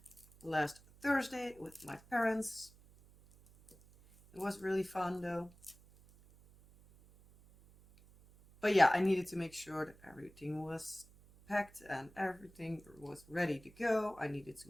last Thursday with my parents. It was really fun though. But yeah, I needed to make sure that everything was packed and everything was ready to go. I needed to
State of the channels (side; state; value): right; noise; hum, 24 dB below the sound